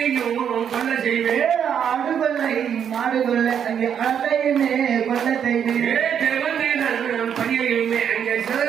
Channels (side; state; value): left; quieter; 8.3 dB